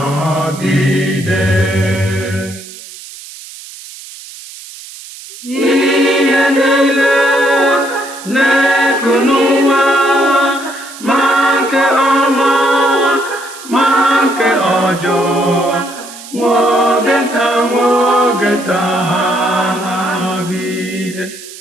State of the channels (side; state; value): right; noise; hiss, 16 dB below the sound